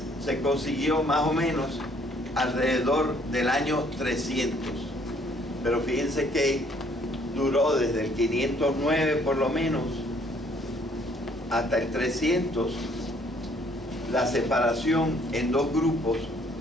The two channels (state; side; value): normal; both; correlation 0.63